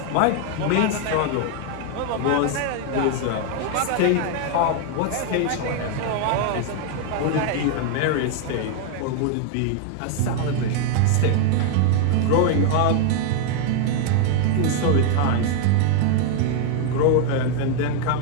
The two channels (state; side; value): different; both; correlation 0.00